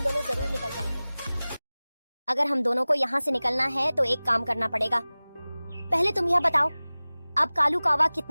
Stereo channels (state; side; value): inverted; both; correlation -0.99